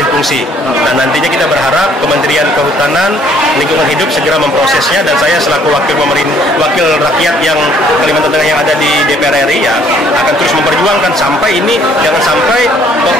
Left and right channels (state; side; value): normal; both; correlation 0.62